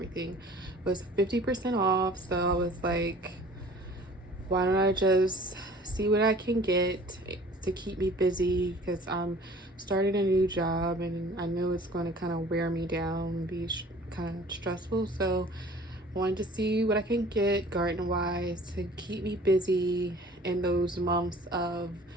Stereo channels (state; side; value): normal; both; correlation 0.48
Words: was 50% off. So I was like, why don't I just see what I can get to keep me busy, because I'm starting a new job and I know it's going to kind of wear me down and be kind of stressful. So I wanted to see what I can get garden wise to keep me busy in those months of